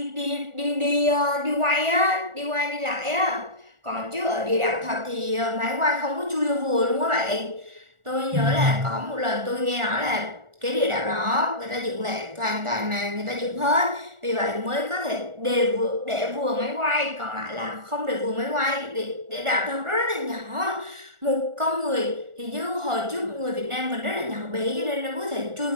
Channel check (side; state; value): left; late; 1.4 ms